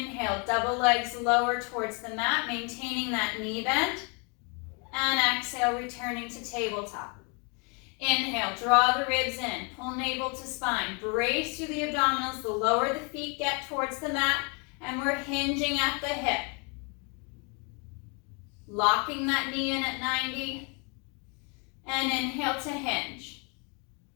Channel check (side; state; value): right; quieter; 34.1 dB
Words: double legs lower towards the mat, maintaining that knee bend. And exhale, returning to tabletop. Inhale, draw the ribs in, pull navel to spine. Brace through the abdominals, the lower the feet get towards the mat, and we're hinging at the hip. Locking that knee in at 90. And inhale to hinge.